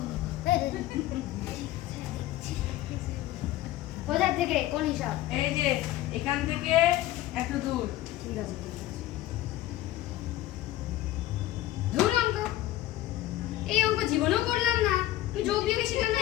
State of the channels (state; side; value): quieter; right; 15.1 dB